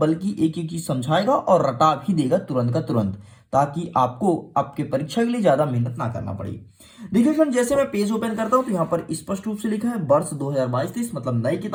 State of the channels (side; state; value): both; identical; correlation 1.00